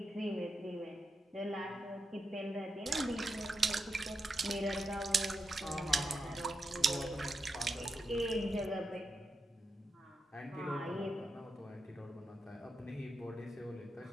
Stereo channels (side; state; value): both; normal; correlation 0.86